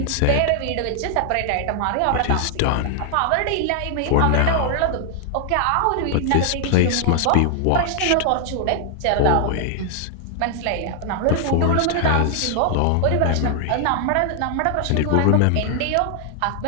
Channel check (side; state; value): both; different; correlation 0.00